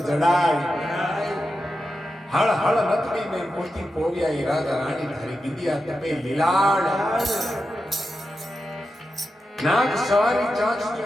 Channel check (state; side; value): normal; both; correlation 0.89